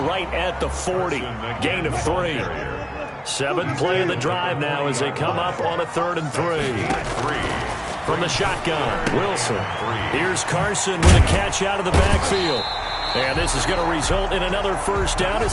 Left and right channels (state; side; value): identical; both; correlation 1.00